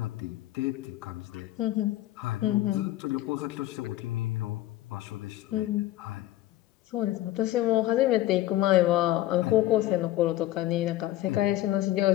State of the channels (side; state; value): right; quieter; 14.8 dB